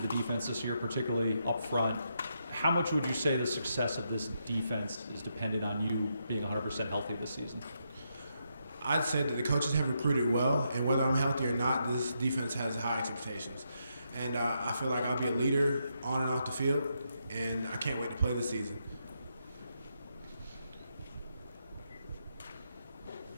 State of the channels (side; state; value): both; inverted; correlation -0.80